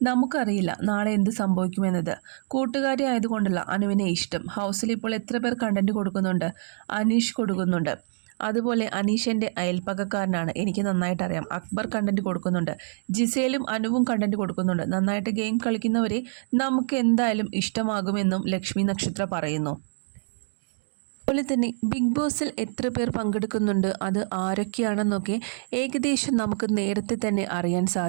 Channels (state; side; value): silent; left; digital silence